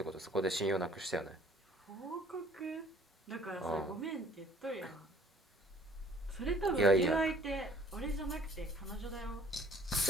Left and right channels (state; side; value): normal; both; correlation 0.55